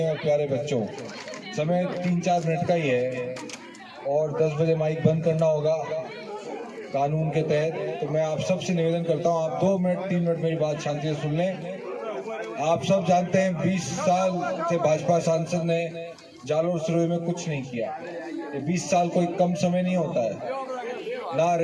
और प्यारे बच्चों। समय 3-4 मिनट का ही है और 10 बजे माइक बंद करना होगा कानून के तहत। तो मैं आप सबसे निवेदन करता हूं, आप 2 मिनट 3 मिनट मेरी बात शांति से सुन लें। आप सब जानते हैं 20 साल से भाजपा सांसद ने जालोर सिरोही में कुछ नहीं किया। ये 20 साल कोई कम समय नहीं होता है। ना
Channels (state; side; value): identical; both; correlation 1.00